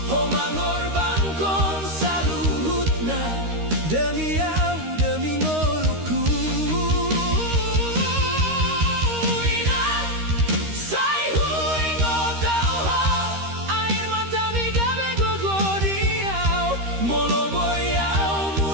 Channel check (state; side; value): late; left; 13 ms